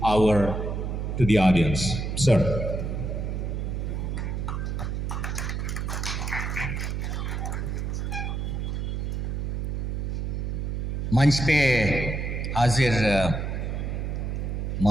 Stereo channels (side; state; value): right; noise; hum, 2 dB below the sound